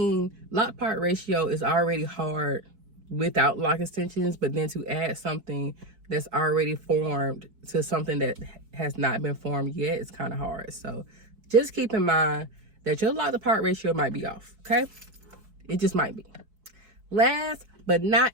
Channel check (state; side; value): late; left; 4.6 ms